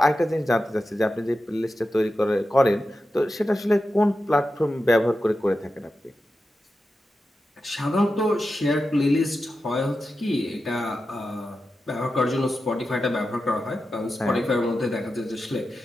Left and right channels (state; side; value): normal; both; correlation 0.91